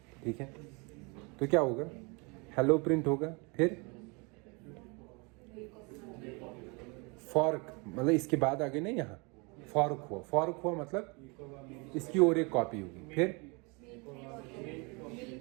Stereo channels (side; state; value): left; quieter; 29.9 dB